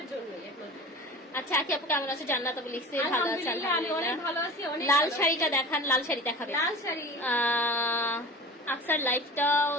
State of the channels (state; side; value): normal; both; correlation 0.36